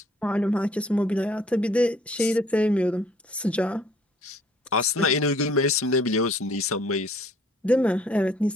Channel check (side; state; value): both; normal; correlation 0.59